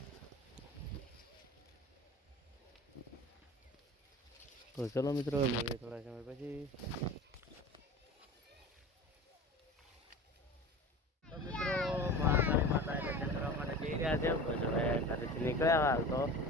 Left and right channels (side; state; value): both; normal; correlation 0.35